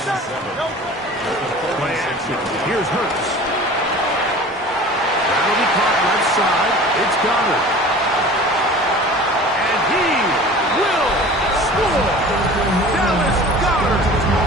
Play action. Here's Hurts. That'll be caught left side. It's Goddard. And he will score. Dallas Goddard.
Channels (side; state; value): both; normal; correlation 0.41